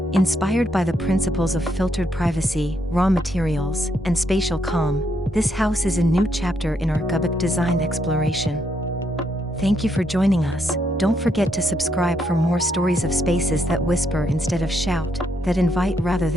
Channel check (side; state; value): both; normal; correlation 0.76